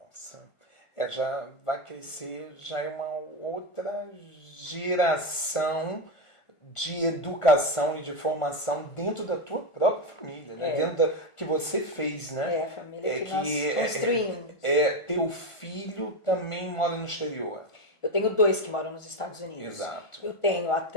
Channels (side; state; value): right; late; 1.5 ms